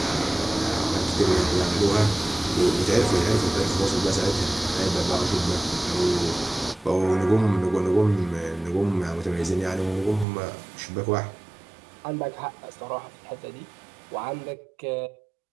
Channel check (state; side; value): drops out; left; at 10.2 s